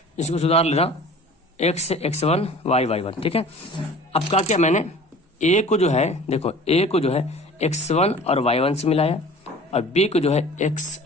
इसको सुधार लेना, x1 y1, ठीक है। अब क्या किया मैंने, ए को जो है देखो, ए को जो है x1 और y1 से मिलाया और बी को जो है x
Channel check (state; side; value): normal; both; correlation 0.44